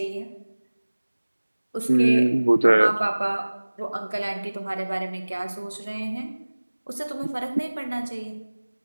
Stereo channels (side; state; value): both; inverted; correlation -1.00